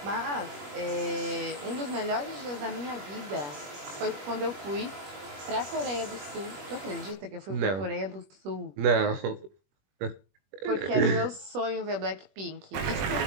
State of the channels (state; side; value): late; left; 21 ms